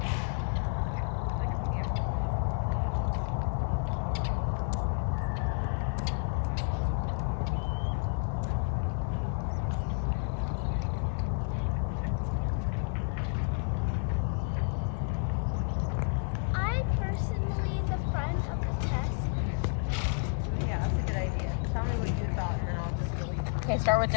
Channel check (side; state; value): right; silent; 57 dB below the other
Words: Okay, start with